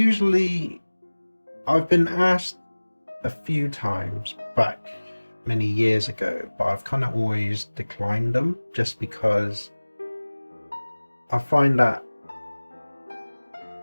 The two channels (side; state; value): both; inverted; correlation -1.00